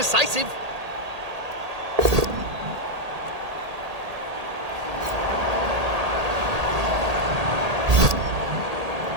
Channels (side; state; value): left; late; 1.8 ms